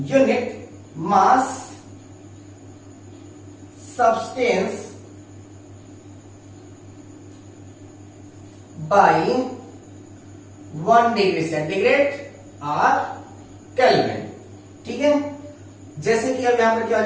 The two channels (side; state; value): both; identical; correlation 1.00